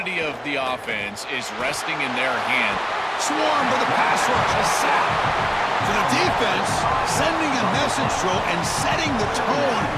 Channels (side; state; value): both; identical; correlation 1.00